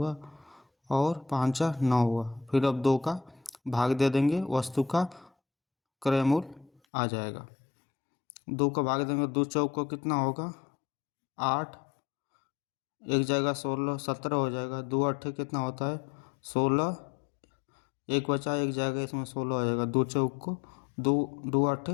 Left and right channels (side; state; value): right; drops out; at 6.7 s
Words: और 5 4 9 हुआ। फिर अब 2 का भाग दे देंगे, वस्तु का क्रय मूल्य आ जाएगा। 2 का भाग देंगे, 2 चौक को कितना होगा, 8, एक जगह 16 17 हो जाएगा, 2 8 कितना होता है, 16, एक बचा एक जगह, इसमें 16 हो जाएगा। 2 चौक को 2 2 8